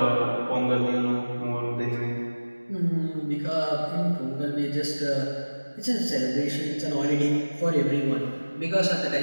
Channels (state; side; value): inverted; both; correlation -1.00